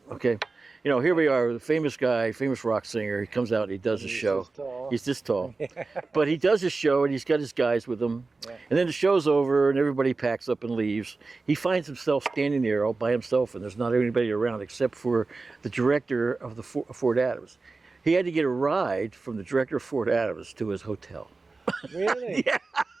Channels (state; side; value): quieter; left; 3.8 dB